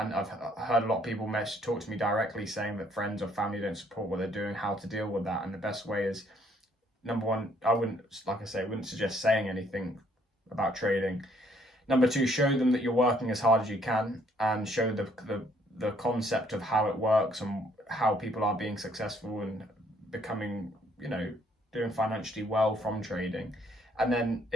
heard a lot of people talk to me directly saying that friends or family don't support what they're doing, how to deal with that. And the best way is, number one, I wouldn't suggest saying anything about trading. Number two, show them that you're working as hard as you can and show the concept of how it works and how people are being successful and becoming, you know, doing financially well from trading. And then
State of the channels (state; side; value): normal; both; correlation 0.66